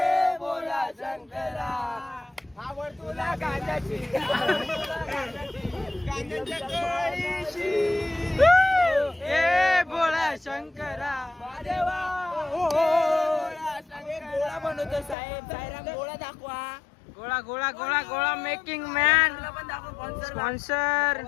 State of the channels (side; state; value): right; drops out; at 15.2 s